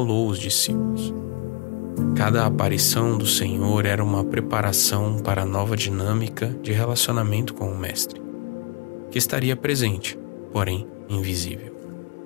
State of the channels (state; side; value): quieter; right; 32.1 dB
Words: os discípulos. Cada aparição do Senhor era uma preparação para a nova dinâmica de relacionamento com o Mestre, que estaria presente, porém invisível.